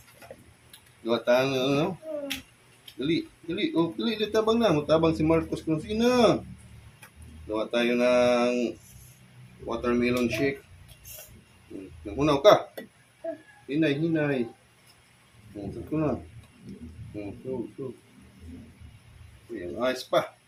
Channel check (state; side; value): identical; both; correlation 1.00